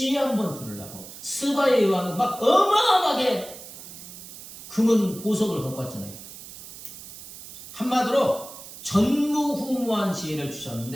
한번 들으려고. 스바의 왕은 막 어마어마하게 금은 보석을 갖고 왔잖아요. 한마디로 전무후무한 지혜를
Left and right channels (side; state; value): right; noise; hiss, 15 dB below the sound